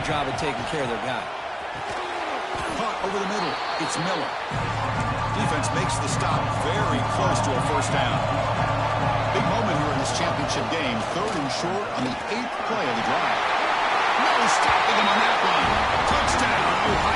job of taking care of their guy. Caught over the middle. It's Miller. Defense makes the stop very close to a first down. Big moment here in this championship game. 3rd and short on the 8th play of the drive. No stopping him on that one. Touchdown,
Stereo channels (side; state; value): both; identical; correlation 1.00